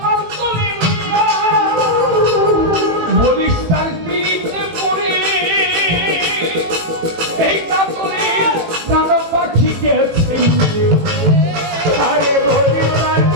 করি বইয়া বলিস তার পিড়িতে পড়ে এই কাতরে কালো পাখি গেছে আরে বলি তার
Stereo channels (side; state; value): left; late; 18 ms